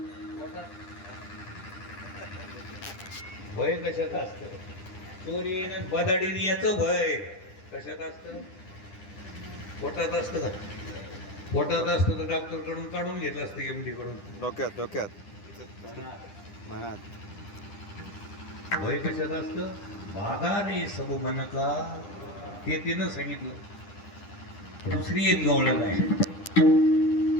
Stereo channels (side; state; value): right; late; 10 ms